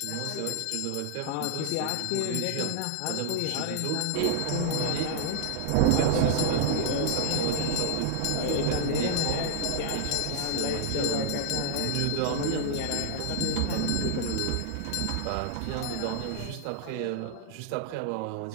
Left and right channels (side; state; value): both; different; correlation -0.01